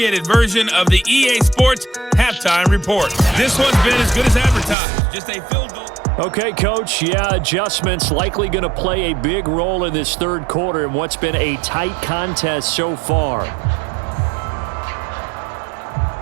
version of the EA Sports Halftime Report. This one's been as good as advertised, just a field goal. Okay, Coach, adjustments likely going to play a big role in this third quarter in what's been a tight contest so far.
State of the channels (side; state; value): left; drops out; at 4.8 s